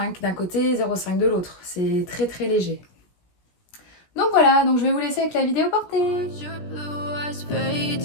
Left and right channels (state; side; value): late; right; 17 ms